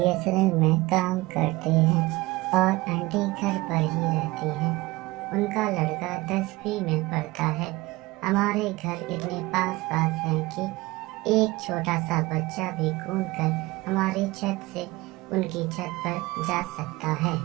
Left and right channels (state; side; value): quieter; left; 20.8 dB